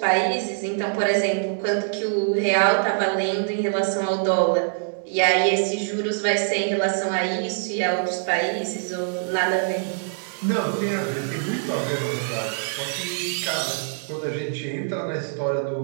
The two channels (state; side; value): silent; left; digital silence